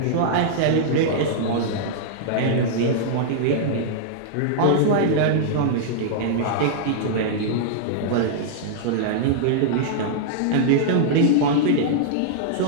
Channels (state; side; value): different; both; correlation -0.02